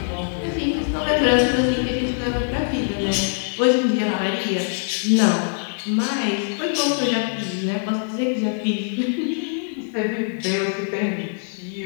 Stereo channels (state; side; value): silent; right; digital silence